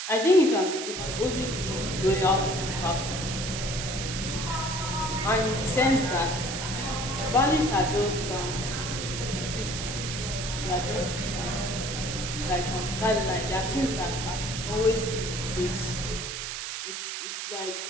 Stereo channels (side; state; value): right; noise; hiss, 5 dB below the sound